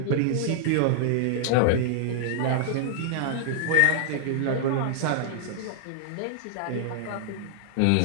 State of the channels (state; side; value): different; both; correlation -0.01